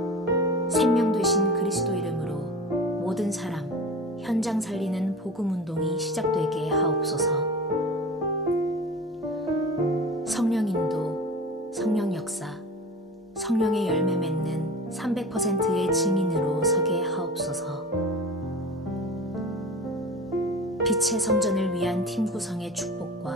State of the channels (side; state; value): both; normal; correlation 0.35